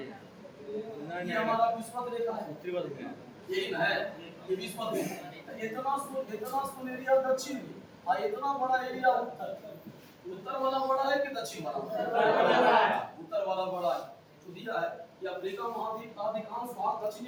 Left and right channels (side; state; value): both; identical; correlation 1.00